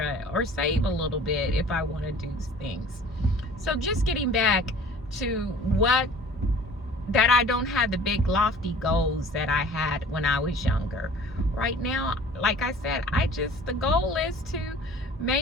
or save a little bit if I want to do things. So just getting back to that I don't have the big lofty goals that I had when I was younger. Right now, like I said, the goal is to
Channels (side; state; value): both; normal; correlation 0.47